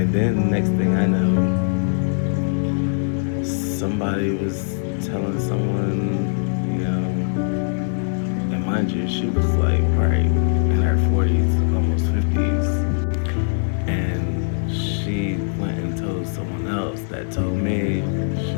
then next thing I know, somebody was telling someone, and mind you, she was like right in her 40s, almost 50s. And she went and told someone else that told me, she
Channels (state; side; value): silent; right; 65 dB below the other